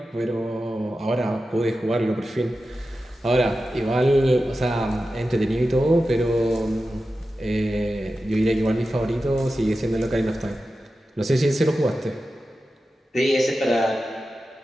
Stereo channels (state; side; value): normal; both; correlation 0.93